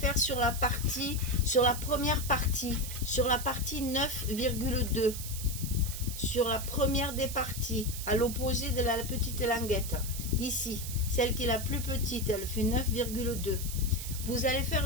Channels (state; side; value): noise; right; hiss, 8 dB below the sound